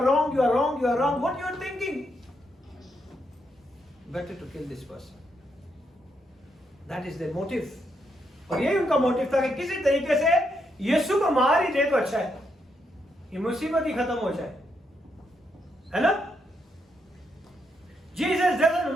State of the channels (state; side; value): normal; both; correlation 0.79